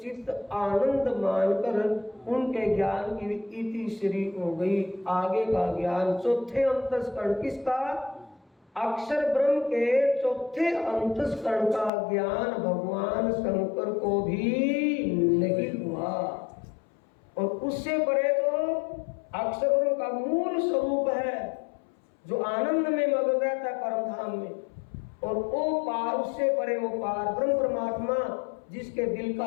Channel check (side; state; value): right; drops out; at 11.9 s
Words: चित्त आनंद मानकर उनके ज्ञान की इति श्री हो गई। आगे का ज्ञान चौथे अंतस्करण किसका? अक्षर ब्रह्म के चौथे अंतस्करण का ज्ञान भगवान शंकर को भी नहीं हुआ। और उससे परे तो अक्षर ब्रह्म का मूल स्वरूप है जो आनंद में मग्न रहता है परम धाम में, और वो पार, उससे परे वो पार ब्रह्म परमात्मा जिसके दिल का